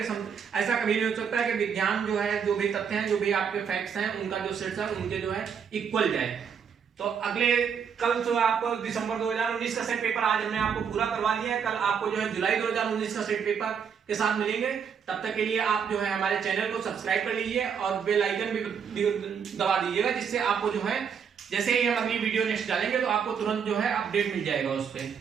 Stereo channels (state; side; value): quieter; left; 7.0 dB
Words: ऐसा कभी नहीं हो सकता है कि विज्ञान जो है जो भी तथ्य हैं, जो भी आपके फैक्ट्स हैं, उनका जो सेट्स है उनके जो है इक्वल जाए। तो अगले कल जो आपको दिसंबर 2019 का सेट पेपर आज हमने आपको पूरा करवा दिया है, कल आपको जो है जुलाई 2019 का सेट पेपर के साथ मिलेंगे। तब तक के लिए आप जो है हमारे चैनल को सब्सक्राइब कर लीजिए और बेल आइकन भी दबा दीजिएगा, जिससे आपको जो है जैसे ही हम अगली वीडियो नेक्स्ट डालेंगे तो आपको तुरंत जो है अपडेट मिल जाएगा उस पर।